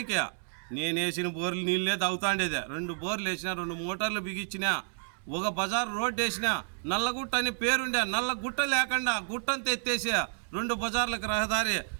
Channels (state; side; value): silent; left; digital silence